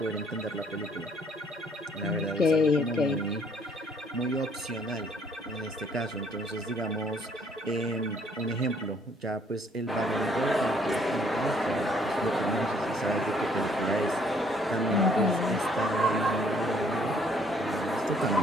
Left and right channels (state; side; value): normal; both; correlation 0.63